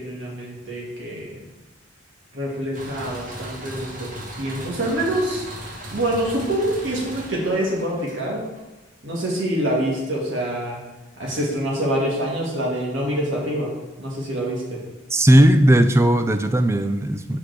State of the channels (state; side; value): normal; both; correlation 0.70